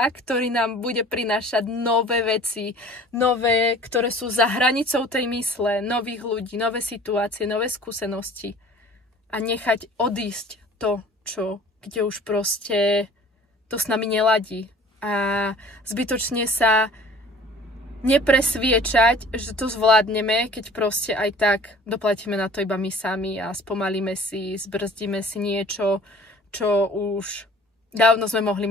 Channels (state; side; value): normal; both; correlation 0.48